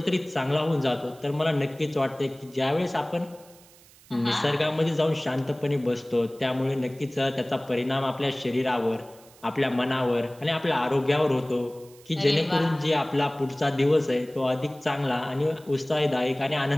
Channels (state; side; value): noise; right; hiss, 25 dB below the sound